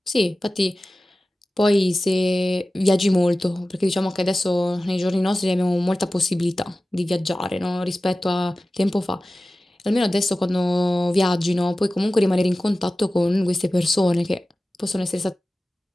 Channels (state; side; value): normal; both; correlation 0.96